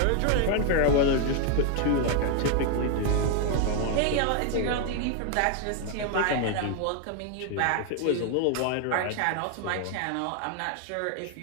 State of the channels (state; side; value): different; both; correlation 0.00